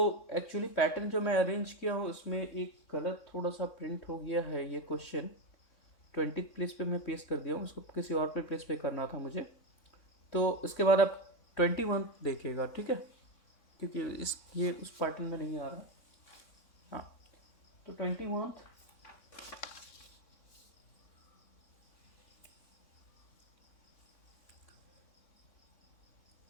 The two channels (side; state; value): right; late; 3.6 ms